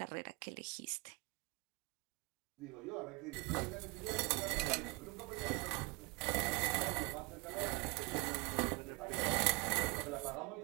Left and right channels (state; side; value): quieter; left; 27.5 dB